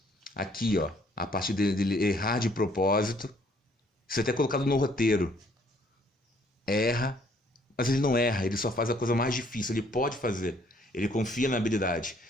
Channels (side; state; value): both; normal; correlation 0.63